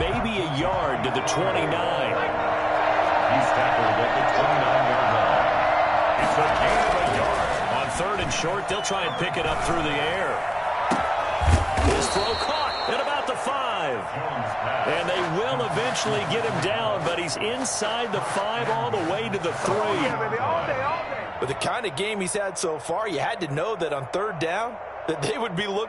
maybe a yard to the 29. He's tackled at the 29-yard line. It's a gain of a yard. On 3rd and short, they'll try and pick it up through the air. His throw caught at about the 5. And they will eventually get him down, but he's inside the 5 all the way to the 3. With the kind of game he's had so far, you had to know that on 3rd down, that they would be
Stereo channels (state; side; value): identical; both; correlation 1.00